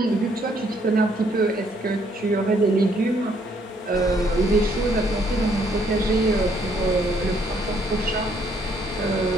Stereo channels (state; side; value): normal; both; correlation 0.68